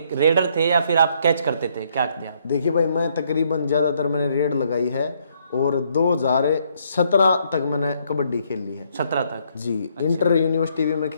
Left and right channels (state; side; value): inverted; both; correlation -0.70